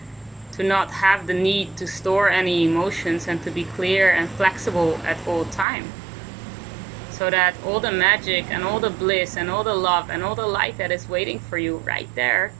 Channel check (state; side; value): drops out; left; at 5.7 s